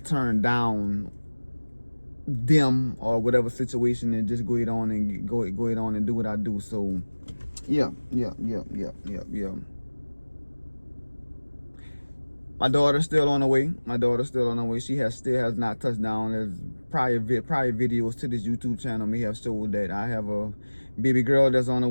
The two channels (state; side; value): inverted; both; correlation -1.00